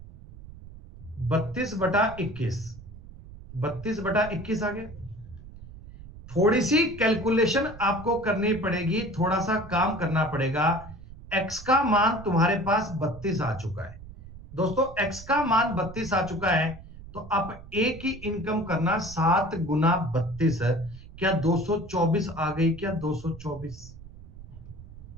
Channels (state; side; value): noise; right; rumble, 16 dB below the sound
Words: 32/21। 32/21 आ गया। थोड़ी सी कैलकुलेशन आपको करनी पड़ेगी, थोड़ा सा काम करना पड़ेगा। x का मान तुम्हारे पास 32 आ चुका है दोस्तों, x का मान 32 आ चुका है। तो अब ए की इनकम करना 7 गुना 32, क्या 224 आ गई, क्या 224।